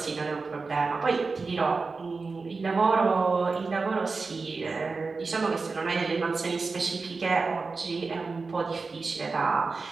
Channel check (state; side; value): quieter; left; 4.2 dB